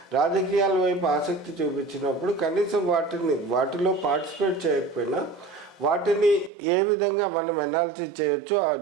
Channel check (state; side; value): drops out; left; at 6.5 s